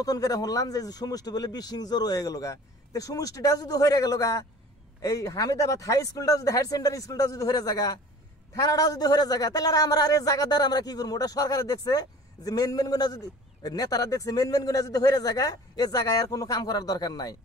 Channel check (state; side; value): normal; both; correlation 0.45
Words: করে শুনলাম যে সমষ্টি বলে বিশিং জোর হয়ে গেল গা তো সমষ্টিটা যদি হয়ে গেল গা এই হামিদাবাদ হাই স্কুলটা যদি হায়ার সেকেন্ডারি স্কুলটা যদি হয়ে জায়গা থানাটাও যদি হয়ে জায়গা তাহলে আমরা আর এই জায়গাদার আমরা কি করবো ওটা সরকারে দেখছে যে মেন গুণা যদি নেতারা দেখছে মেন গুণা যদি হয়ে জায়গা এই জায়গায় আর কোনো কাম করার দরকার নাই